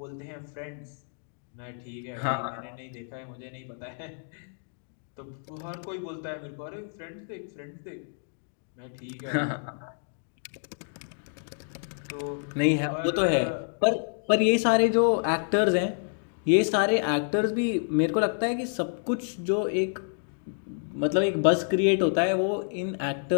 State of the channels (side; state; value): right; silent; digital silence